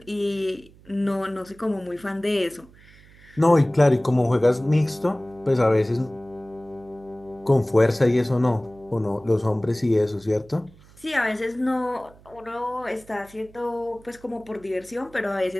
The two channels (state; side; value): noise; right; hum, 25 dB below the sound